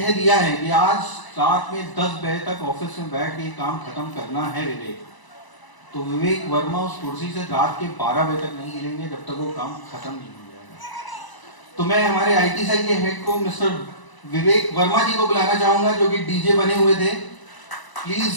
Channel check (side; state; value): right; late; 1.0 ms